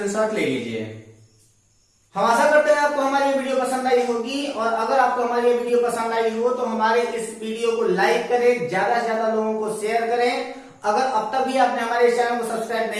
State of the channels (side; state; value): both; identical; correlation 1.00